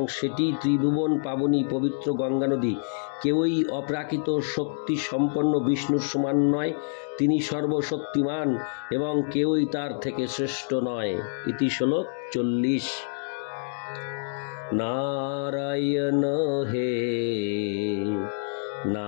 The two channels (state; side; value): silent; right; digital silence